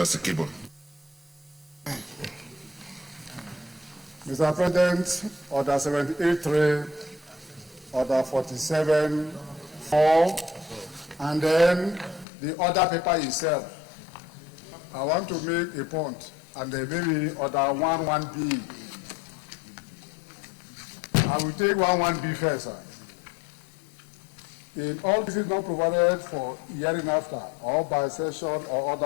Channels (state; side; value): drops out; right; at 12.2 s